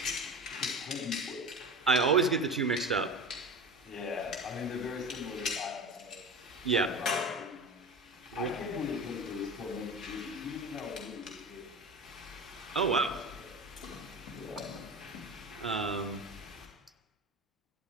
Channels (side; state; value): both; normal; correlation 0.30